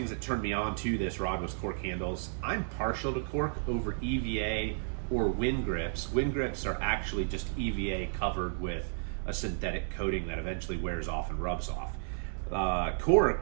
that turned me on to this rod was cork handles. I'm partial to cork over EVA or wind grips. Wind grips are actually just EVA covered with a synthetic coating that eventually wears off and rubs off.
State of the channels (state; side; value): silent; left; digital silence